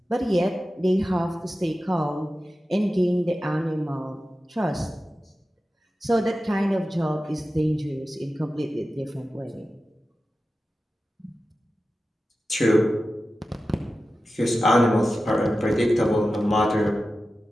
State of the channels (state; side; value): normal; both; correlation 0.94